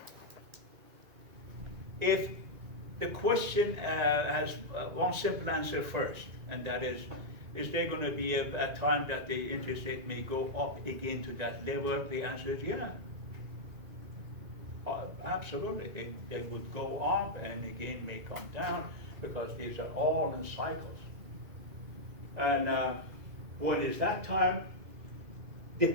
if the question has one simple answer first, and that is there going to be a time that the interest rate may go up again to that level? The answer is yeah. Absolutely. They would go up and again may come down because these are all in cycles. And what is that time?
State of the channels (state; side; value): late; left; 1.9 ms